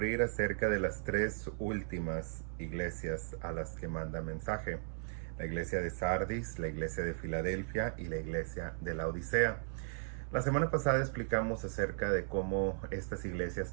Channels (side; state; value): left; silent; 53 dB below the other